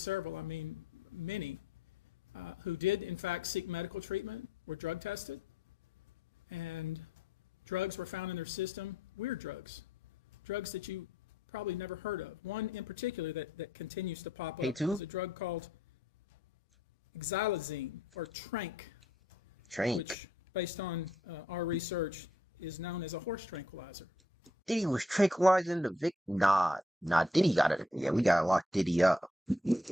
I mean many, who did in fact seek medical treatment were drug tested, and drugs were found in their system, weird drugs that you probably never heard of. One in particular that continues to pop up is a drug called xylazine, or Trank, which, based on our research, is known as a horse tranquilizer. Diddy was tranquilizing the victim. Nah, Diddy got it. Yeah, we gotta lock Diddy up.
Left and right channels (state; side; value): normal; both; correlation 0.68